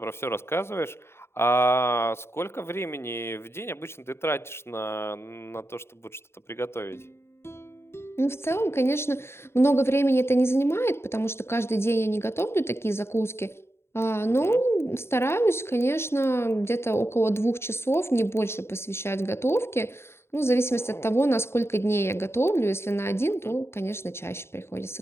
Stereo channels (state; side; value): late; right; 0.12 ms